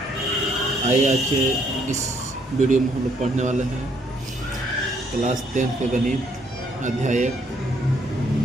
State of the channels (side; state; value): both; normal; correlation 0.68